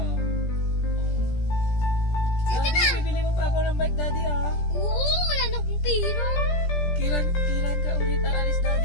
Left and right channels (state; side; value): late; right; 17 ms